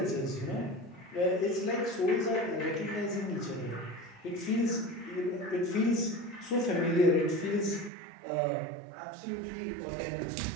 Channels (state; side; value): drops out; left; at 7.9 s